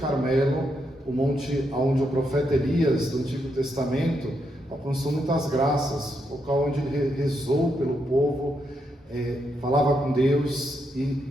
o monte onde o profeta Elias, do Antigo Testamento, alcançou muitas graças, o local onde ele rezou pelo povo, falava com Deus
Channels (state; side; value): normal; both; correlation 0.80